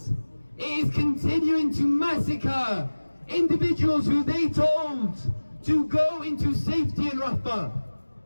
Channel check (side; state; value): both; inverted; correlation -1.00